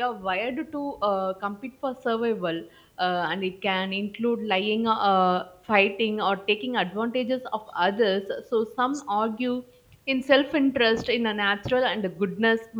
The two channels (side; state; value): both; identical; correlation 1.00